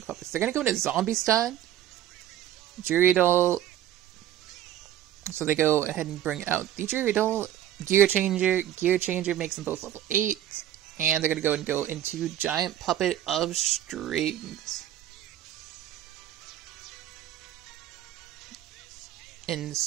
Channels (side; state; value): left; quieter; 11.9 dB